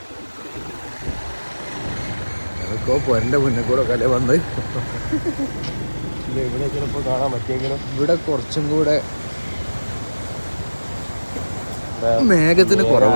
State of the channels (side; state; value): both; inverted; correlation -1.00